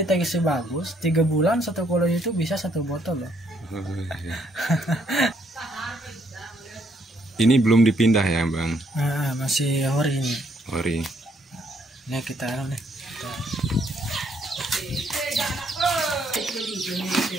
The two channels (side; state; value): both; normal; correlation 0.70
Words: bagus, 3 bulan 1 koloni itu bisa 1 botol loh. Ini belum dipindah ya, Bang? Masih ori ini. Ori. Ini kita